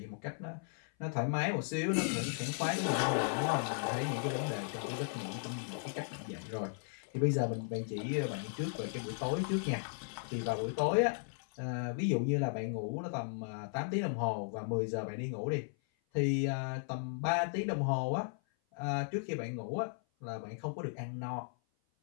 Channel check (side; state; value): right; silent; 54 dB below the other